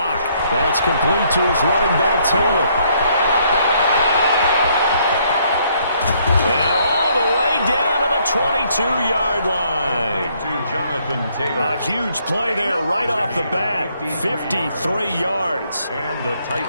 That's complete to his running back, Taylor. And all the way down to the 22-yard line. To Jonathan Taylor. A huge play there right off the bat. 53 yards. And the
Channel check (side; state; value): both; inverted; correlation -0.68